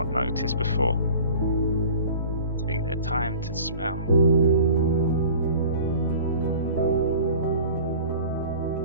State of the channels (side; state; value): both; inverted; correlation -0.43